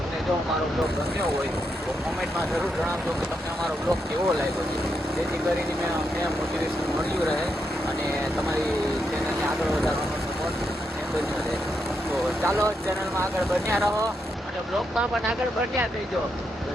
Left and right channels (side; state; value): both; normal; correlation 0.81